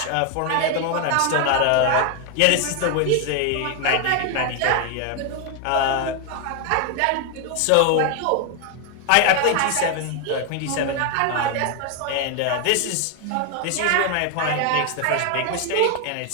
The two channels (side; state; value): both; different; correlation 0.00